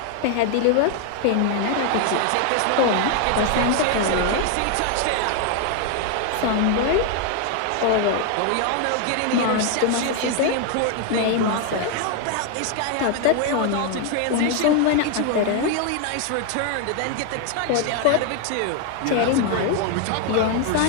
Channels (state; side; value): different; both; correlation 0.01